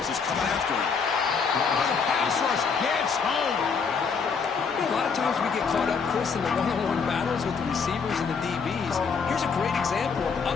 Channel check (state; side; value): quieter; right; 5.6 dB